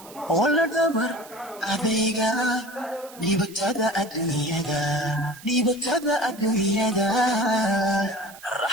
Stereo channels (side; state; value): right; noise; hiss, 20 dB below the sound